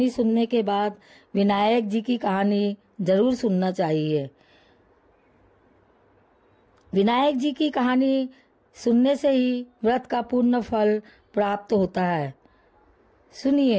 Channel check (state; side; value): identical; both; correlation 1.00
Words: सुनने के बाद विनायक जी की कहानी जरूर सुनना चाहिए। विनायक जी की कहानी सुनने से ही व्रत का पूर्ण फल प्राप्त होता है।